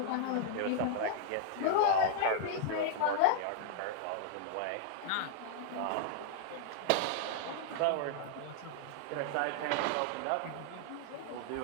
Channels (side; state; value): both; different; correlation -0.01